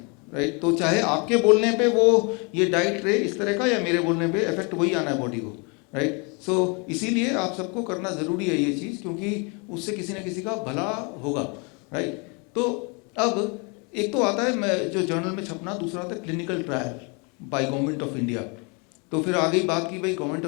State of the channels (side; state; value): right; quieter; 32.5 dB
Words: राइट। तो चाहे आपके बोलने पे वो ये डाइट रहे इस तरह का, या मेरे बोलने पे इफेक्ट वही आना है बॉडी को, राइट। सो इसीलिए आप सबको करना ज़रूरी है ये चीज़, क्योंकि उससे किसी न किसी का भला होगा, राइट। तो अब एक तो आता है जो जर्नल में छपना, दूसरा आता है clinical trial by government of India. तो फिर आ गई बात की भाई गवर्नमेंट